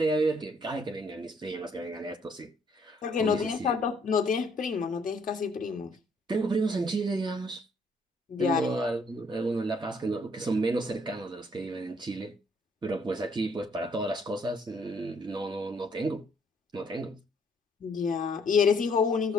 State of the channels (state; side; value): normal; both; correlation 0.66